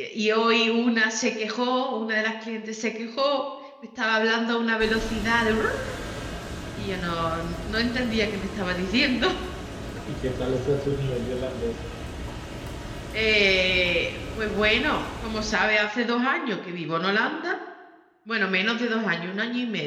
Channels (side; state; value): both; identical; correlation 1.00